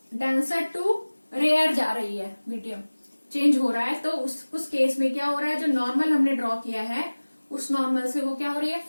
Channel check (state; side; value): inverted; both; correlation -1.00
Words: डेंसर टू रेयर जा रही है, मीडियम चेंज हो रहा है। तो उस केस में क्या हो रहा है, जो नॉर्मल हमने ड्रॉ किया है उस नॉर्मल से वो क्या हो रही है,